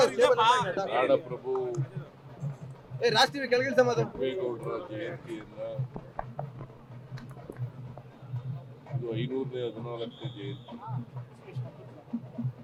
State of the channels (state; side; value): identical; both; correlation 1.00